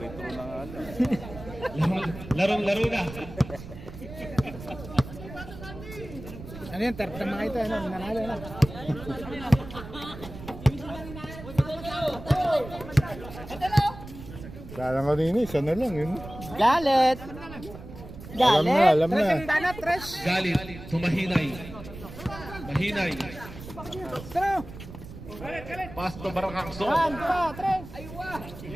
Larong-laro na. Ano yun? Third na mga ito. Ano? Nanalo na. Kala ko din, isa na lang yun. Galit! Alam na, alam Tres na. ang dana, tres. Galit to Mahinay. Mahinay. Pero, Pass to Barangakso. one, two, tres.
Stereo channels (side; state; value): right; noise; rumble, 13 dB below the sound